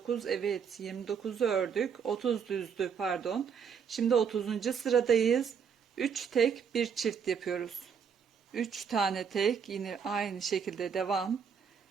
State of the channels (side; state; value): left; quieter; 6.8 dB